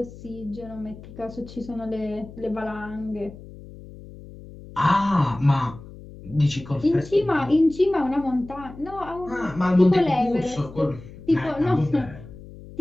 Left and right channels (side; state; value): left; noise; hum, 17 dB below the sound